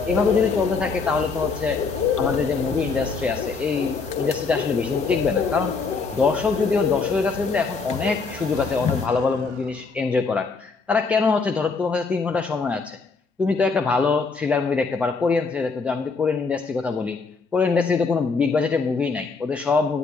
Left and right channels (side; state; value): right; quieter; 4.6 dB